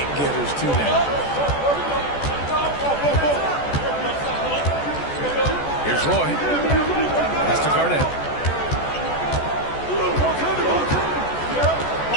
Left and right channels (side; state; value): right; late; 14 ms